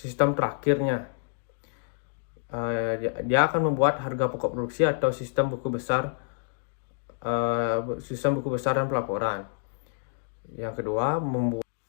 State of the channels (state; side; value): silent; right; digital silence